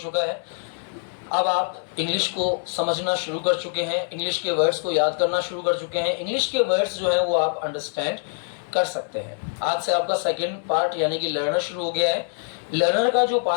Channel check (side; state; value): right; silent; digital silence